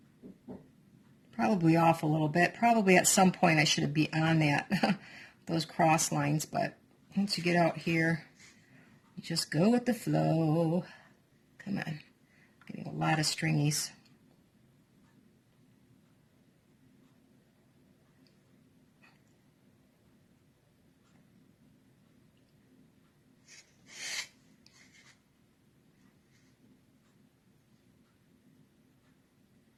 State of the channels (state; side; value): identical; both; correlation 1.00